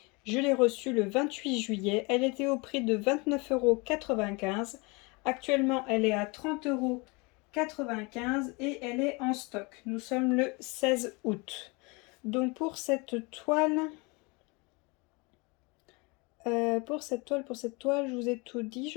Je l'ai reçue le 28 juillet. Elle était au prix de 29,95 €. Actuellement, elle est à 30,95 € et elle est en stock. Nous sommes le 16 août. Donc pour cette toile, je vous ai tout dit,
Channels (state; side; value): quieter; right; 28.0 dB